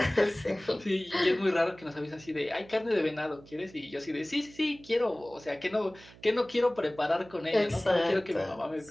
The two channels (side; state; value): right; noise; hum, 22 dB below the sound